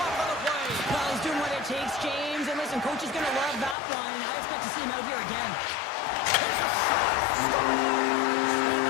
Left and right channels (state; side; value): drops out; right; at 3.8 s